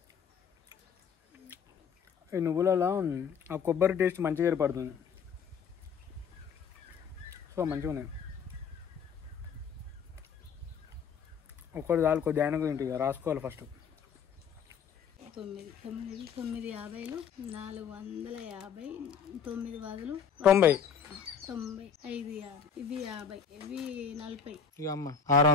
ఈ నువ్వులలో ఆ కొబ్బరి టేస్ట్ మంచిగా ఏర్పడుతుంది. సో మంచిగా ఉన్నాయి. ఒక్కటి చాలు, కొద్ది ఆయన గురించి రాసుకోవాలి. ఫస్ట్ 950 450 9 బదులు 90 5 ఇవి 50 ఇవి 40. ఇక అమ్మ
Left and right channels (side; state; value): right; quieter; 6.8 dB